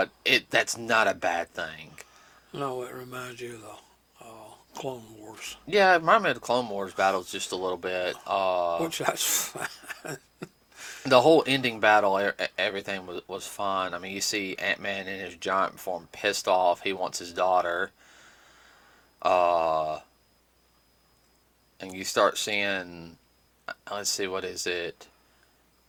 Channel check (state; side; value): identical; both; correlation 1.00